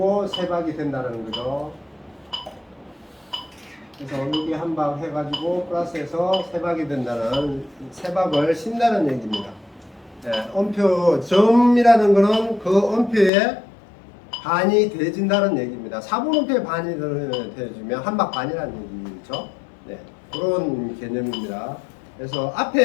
세 박이 된다는 거죠. 그래서 여기 한 박 해가지고 플러스해서 세 박이 된다는 세 박을 신다는 얘기입니다. 음표 점이라는 거는 그 음표에 반이 되어진다는 얘기입니다. 4분음표에 반이 되어지면 한 박 반이라는 얘기죠. 네, 그런 개념입니다. 그래서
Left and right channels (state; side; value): drops out; right; at 13.3 s